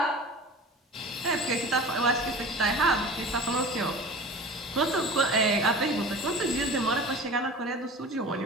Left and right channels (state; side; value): normal; both; correlation 0.37